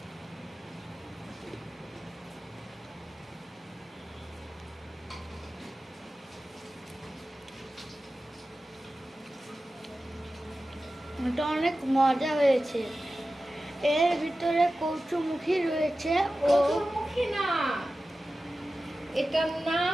এটা অনেক মজা হয়েছে। এর ভিতরে কচুমুখী রয়েছে। কচুরমুখী না, এটার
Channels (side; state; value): both; normal; correlation 0.94